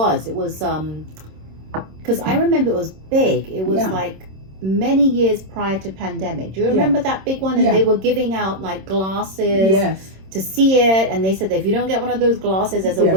It was because I remember it was big. It was like many years prior to pandemic. Do you remember that big one? And they were giving out like glasses to see it, and they said that if you don't get one of those glasses, there's a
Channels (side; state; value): left; late; 26 ms